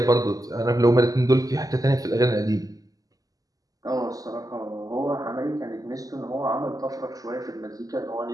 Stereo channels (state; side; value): late; left; 0.17 ms